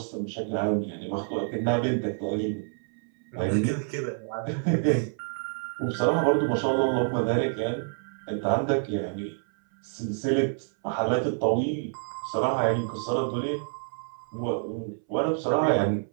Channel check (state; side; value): silent; left; 60 dB below the other